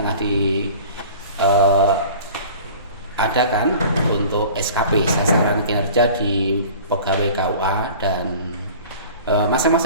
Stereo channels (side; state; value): both; inverted; correlation -0.44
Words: diadakan untuk SKP, sasaran kinerja di pegawai KUA, dan